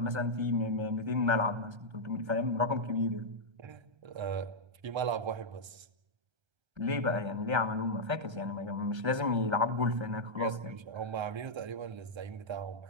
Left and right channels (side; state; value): left; late; 1.3 ms